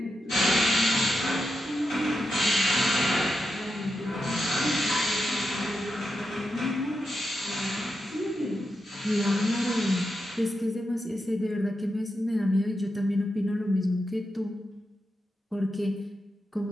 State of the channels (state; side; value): normal; both; correlation 0.87